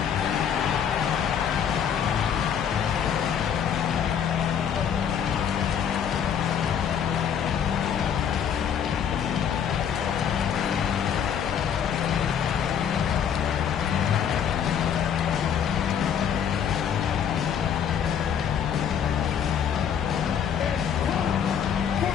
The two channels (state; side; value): quieter; right; 8.2 dB